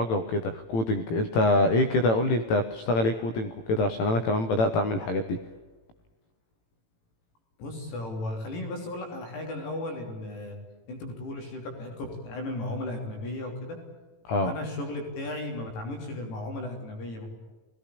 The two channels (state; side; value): late; right; 18 ms